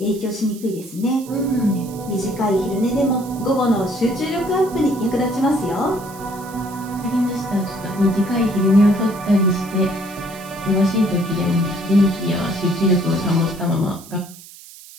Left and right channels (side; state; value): right; noise; hiss, 19 dB below the sound